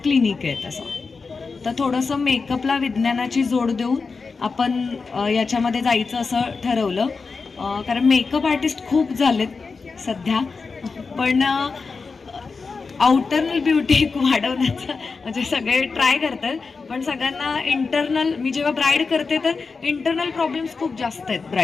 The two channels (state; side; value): quieter; right; 4.6 dB